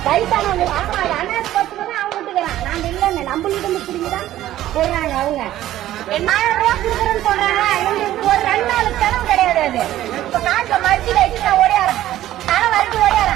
வயசானவங்க அது அனாதை பஸ்ல தான் அவங்க விட்டுக்கிறான். நாங்க இல்லைன்னு நம்மள்கிட்ட இருந்து பிடிங்கதான் போடுறாங்க. அவங்க 1000 ரூபாய் கொடுக்குறேன்னு சொல்றாங்க. எங்களுக்கு ஒரு 2 நாளுக்கு தரம் கிடையாது. அது இப்ப காசை மறுத்து வச்சு நான் ஓடியாரேன். தரம் வரைக்கும்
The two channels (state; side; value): quieter; left; 13.7 dB